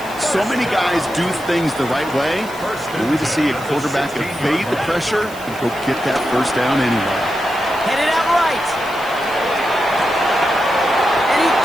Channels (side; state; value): left; noise; hiss, 19 dB below the sound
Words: So many guys do things the right way, only to see a quarterback evade the pressure and go get that first down anyway. Headed out right. And he